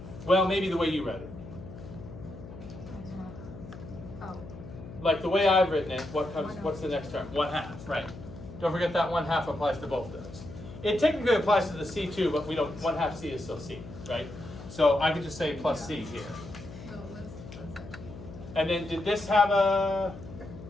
Well, maybe the way you read it. Like the way I've written it, what's the next term? 1/2, right. Don't forget that 1/2 applies to both those. It technically applies to the c too, but we don't, 1/2 c is still c, right? So I could just say plus c here. And then did this have a,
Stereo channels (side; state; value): left; noise; hum, 14 dB below the sound